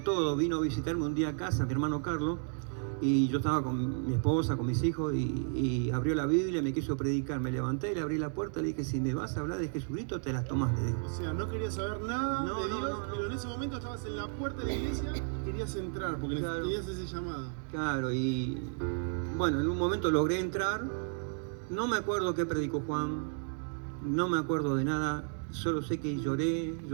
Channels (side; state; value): left; silent; 56 dB below the other